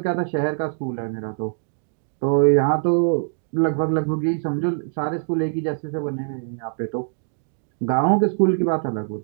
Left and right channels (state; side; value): silent; left; digital silence